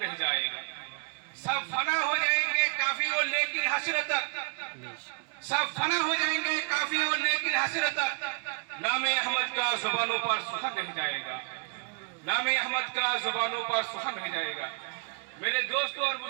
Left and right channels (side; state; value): left; quieter; 37.3 dB